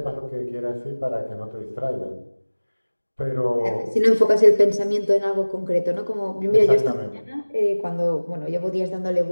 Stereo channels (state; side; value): inverted; both; correlation -1.00